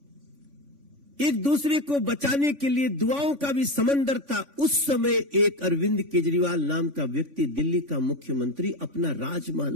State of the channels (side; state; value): left; late; 3.5 ms